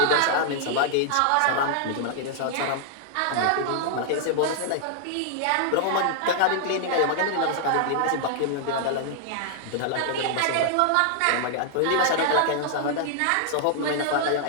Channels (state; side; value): different; both; correlation -0.01